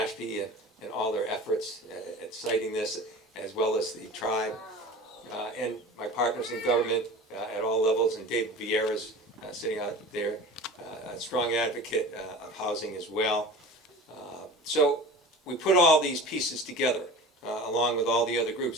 and all their efforts at citing this, as well as the tribe. And my partners in government at all levels, and David Vieira's sitting out there, a strong advocate of housing as well. So we put all these pieces together, along with all the other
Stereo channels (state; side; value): normal; both; correlation 0.37